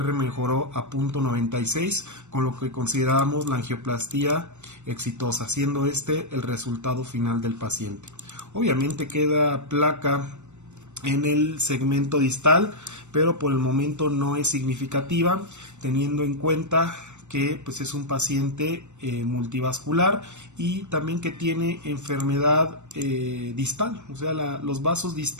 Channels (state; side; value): late; left; 0.84 ms